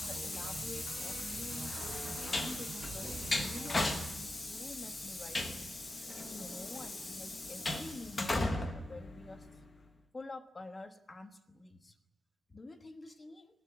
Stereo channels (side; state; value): both; normal; correlation 0.91